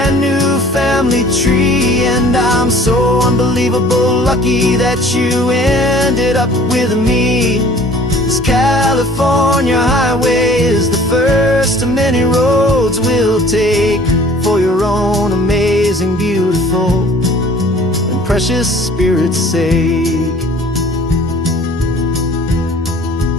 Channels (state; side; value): normal; both; correlation 0.50